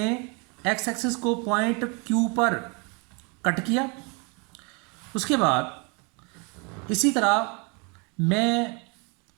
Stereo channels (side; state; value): left; quieter; 32.7 dB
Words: एक्स एक्सिस को पॉइंट क्यू पर कट किया। उसके बाद इसी तरह मैं